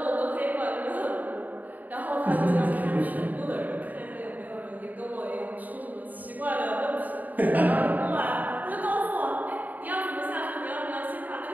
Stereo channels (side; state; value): left; late; 0.081 ms